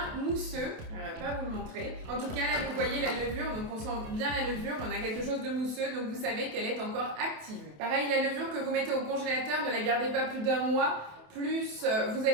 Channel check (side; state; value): left; late; 27 ms